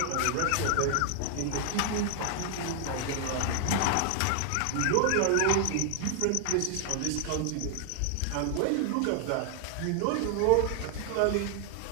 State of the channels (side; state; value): both; different; correlation 0.00